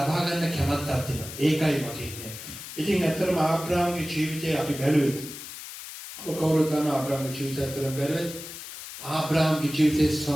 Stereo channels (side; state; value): left; noise; hiss, 11 dB below the sound